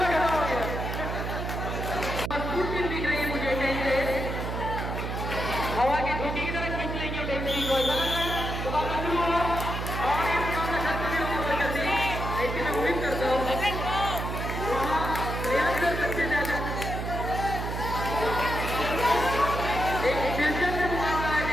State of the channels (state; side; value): noise; right; hum, 4 dB below the sound